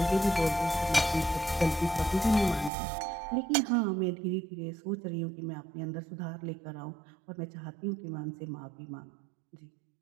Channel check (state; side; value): drops out; left; at 2.7 s